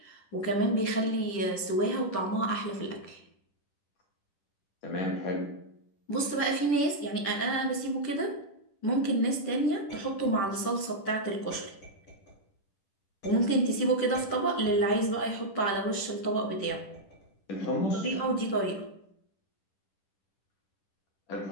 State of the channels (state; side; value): late; right; 10 ms